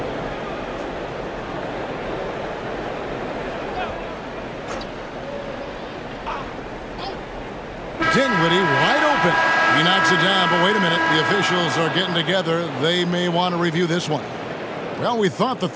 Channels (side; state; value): both; identical; correlation 1.00